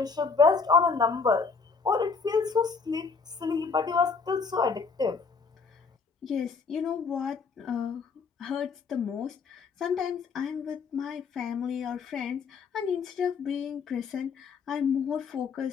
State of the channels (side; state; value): right; quieter; 5.1 dB